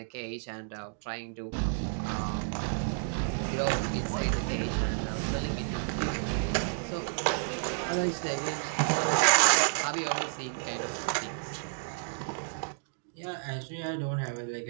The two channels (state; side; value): silent; left; digital silence